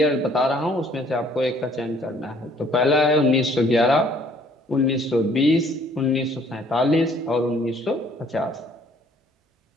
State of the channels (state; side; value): normal; both; correlation 0.60